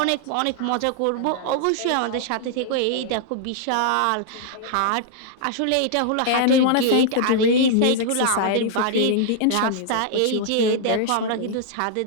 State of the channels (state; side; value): different; both; correlation -0.01